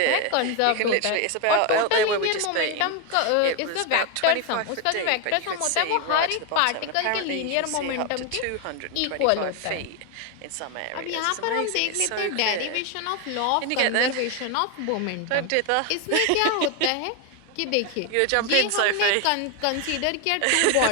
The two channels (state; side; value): different; both; correlation 0.01